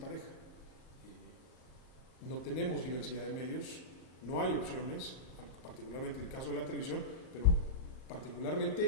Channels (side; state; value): right; late; 38 ms